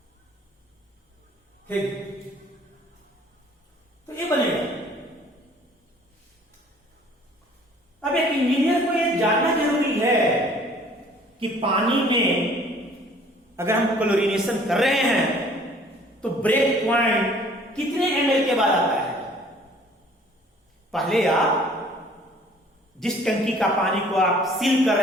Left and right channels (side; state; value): both; normal; correlation 0.54